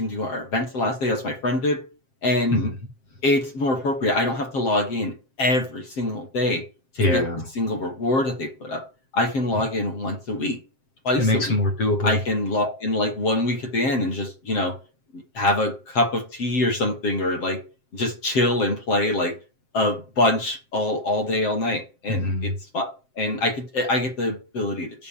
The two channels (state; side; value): late; right; 7.6 ms